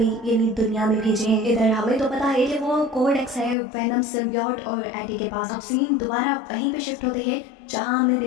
यानी दुनिया में भेजे हैं। इधर हमें तो पता है कि वो कोड एक्स है वेनम सिम्बियोट और एडी के पास। अब सीन दोबारा वहीं पे शिफ्ट होते हैं जहाँ हमने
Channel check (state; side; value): drops out; right; at 3.6 s